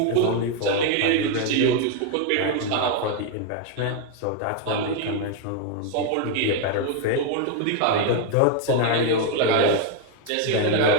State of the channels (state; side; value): different; both; correlation 0.01